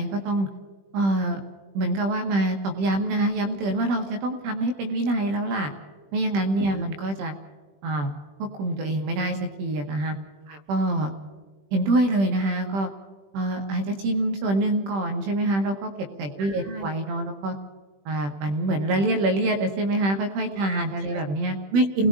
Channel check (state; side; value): late; left; 21 ms